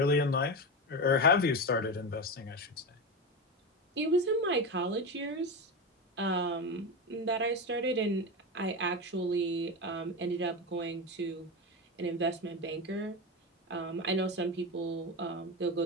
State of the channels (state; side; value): normal; both; correlation 0.18